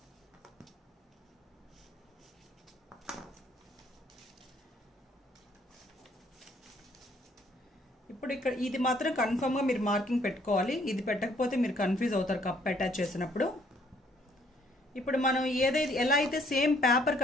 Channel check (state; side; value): normal; both; correlation 0.64